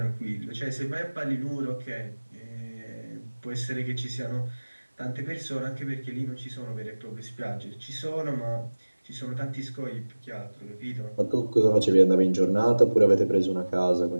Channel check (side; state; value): both; inverted; correlation -1.00